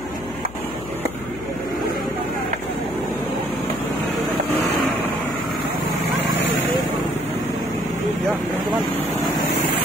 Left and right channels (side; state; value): left; noise; hum, 14 dB below the sound